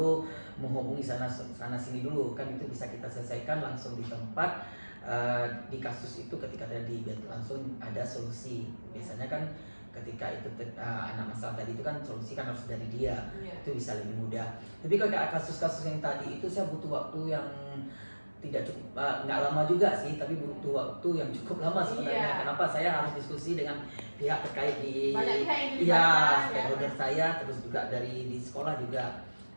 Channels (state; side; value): inverted; both; correlation -1.00